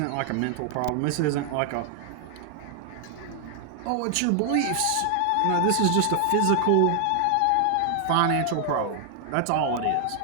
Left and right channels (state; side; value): different; both; correlation 0.00